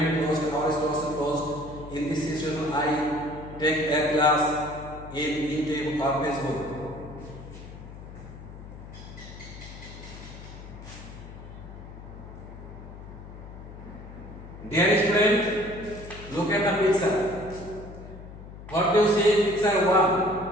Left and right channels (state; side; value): noise; left; hum, 14 dB below the sound